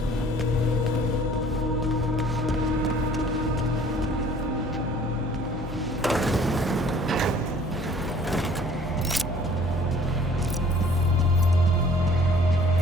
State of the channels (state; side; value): normal; both; correlation 0.54